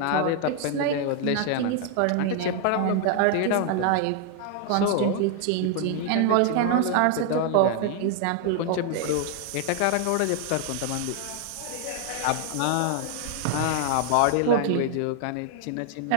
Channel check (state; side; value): different; both; correlation 0.00